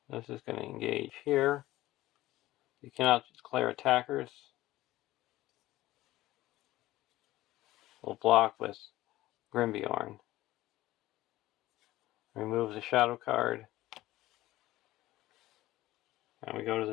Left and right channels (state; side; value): quieter; right; 16.5 dB